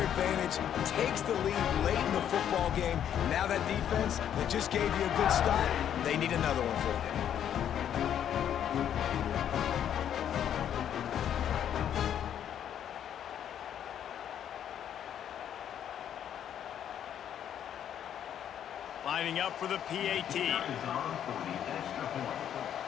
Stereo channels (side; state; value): right; quieter; 9.7 dB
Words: takes the lead late in the football game. Now that defense that just gave you a good start, they need another one for you. Lining up for the PAT.